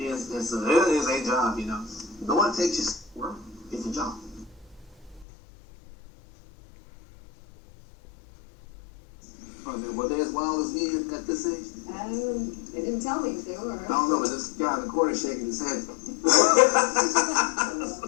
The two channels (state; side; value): drops out; right; at 5.2 s